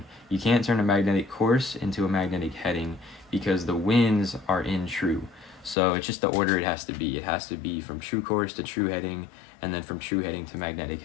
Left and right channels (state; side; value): drops out; right; at 5.8 s